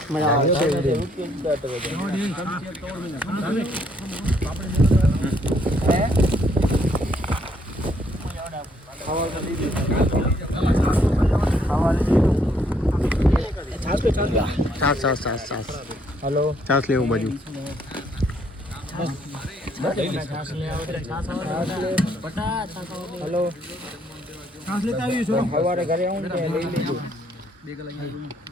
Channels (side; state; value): both; normal; correlation 0.69